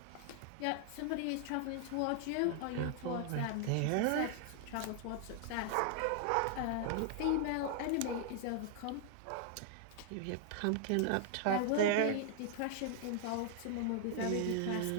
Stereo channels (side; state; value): both; different; correlation 0.00